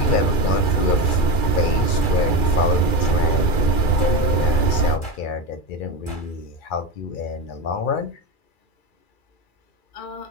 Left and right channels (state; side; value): late; right; 2.3 ms